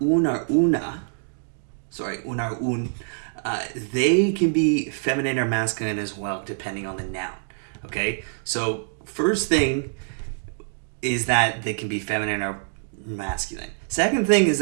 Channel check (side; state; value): left; silent; digital silence